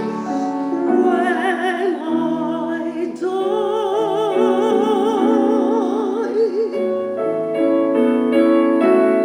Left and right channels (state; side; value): identical; both; correlation 1.00